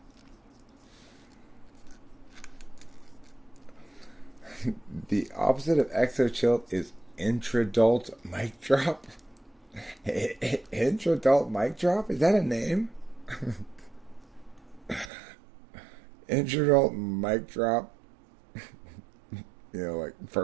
The opposite of Exochill is intradult mic drop. Intradult mic drop? Is that a name? Intradult mic drop. Like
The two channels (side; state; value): left; drops out; at 15.1 s